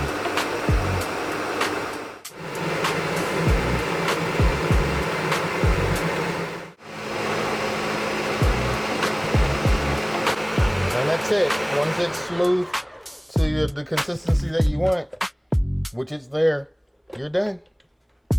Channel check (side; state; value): both; identical; correlation 1.00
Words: that's it. Once it's smooth to the consistency that you want, which it's there, you're done.